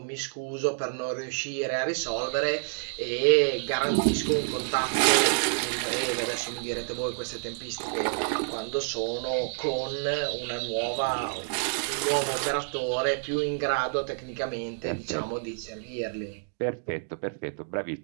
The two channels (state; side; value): silent; left; digital silence